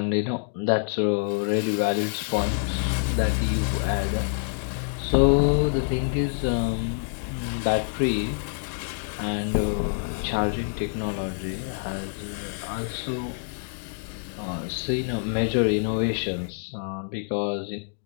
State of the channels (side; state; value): right; silent; digital silence